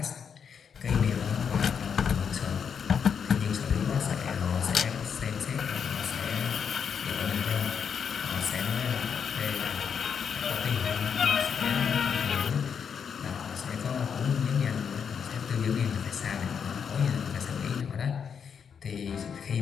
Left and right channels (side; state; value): right; quieter; 7.0 dB